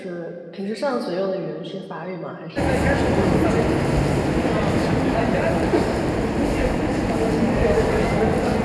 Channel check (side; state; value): both; identical; correlation 1.00